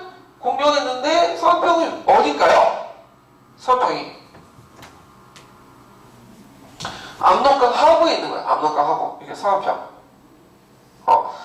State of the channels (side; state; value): both; identical; correlation 1.00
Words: 공격했는데 서안평이 어딜까요? 서안평이 압록강 하구에 있는 거예요. 압록강 하구. 이게 서안평.